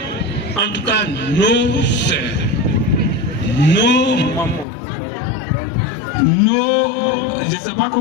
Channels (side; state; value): right; drops out; at 4.7 s